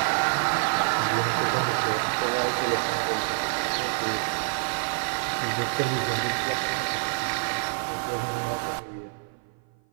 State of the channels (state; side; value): silent; left; 55 dB below the other